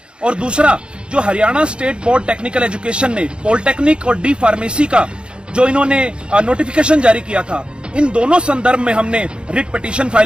और दूसरा जो Haryana state board technical education ने पॉलिटेक्निक और डी फार्मेसी का जो इन्होंने नोटिफिकेशन जारी किया था, इन दोनों संदर्भ में हमने रिट पिटीशन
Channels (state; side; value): late; left; 0.054 ms